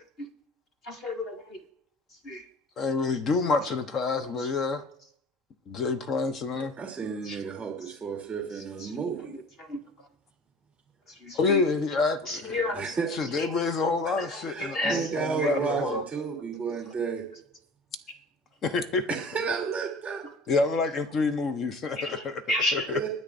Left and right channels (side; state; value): both; normal; correlation 0.43